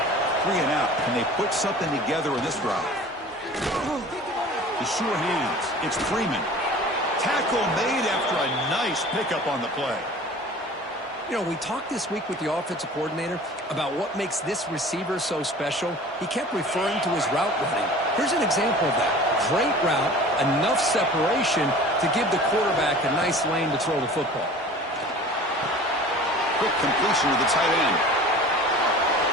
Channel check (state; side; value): normal; both; correlation 0.43